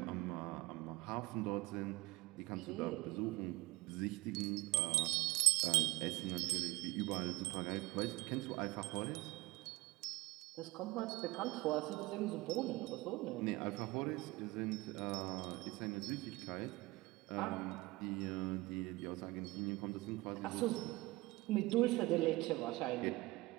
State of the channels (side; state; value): left; quieter; 21.2 dB